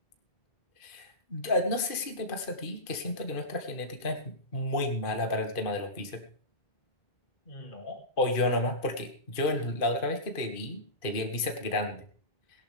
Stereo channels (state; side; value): late; right; 2.4 ms